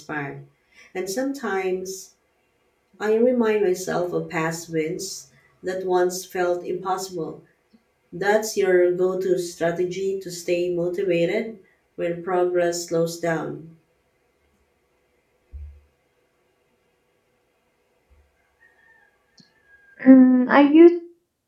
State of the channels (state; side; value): identical; both; correlation 1.00